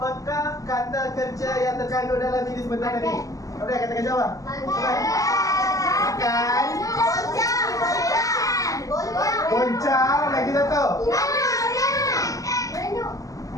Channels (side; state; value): right; late; 0.16 ms